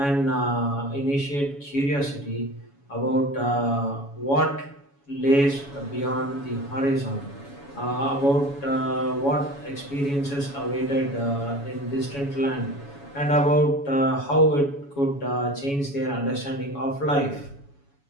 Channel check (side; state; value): right; late; 7.1 ms